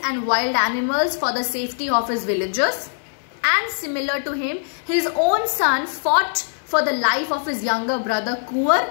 and wild animals for the safety of his villagers. And similar to him, his own son fought for the life of his younger brother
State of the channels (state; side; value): silent; right; digital silence